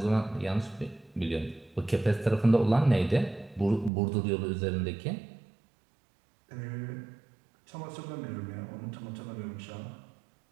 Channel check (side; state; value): left; drops out; at 3.9 s